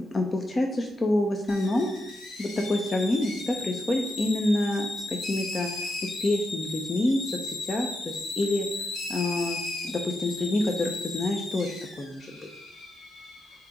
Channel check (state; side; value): normal; both; correlation 0.85